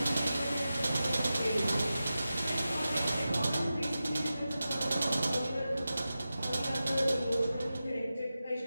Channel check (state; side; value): inverted; both; correlation -0.93